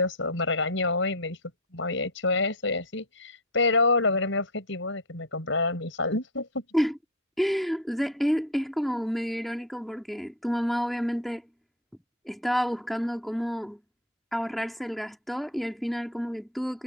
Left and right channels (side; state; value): both; normal; correlation 0.17